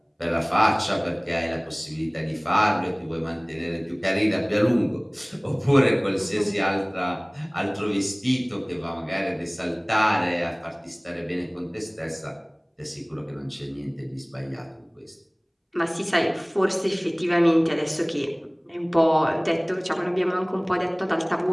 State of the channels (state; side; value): identical; both; correlation 1.00